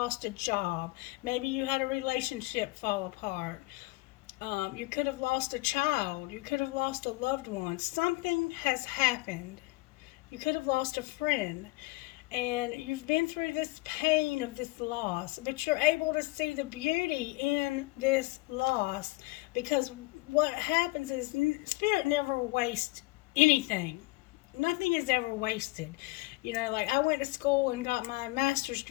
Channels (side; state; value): right; quieter; 23.3 dB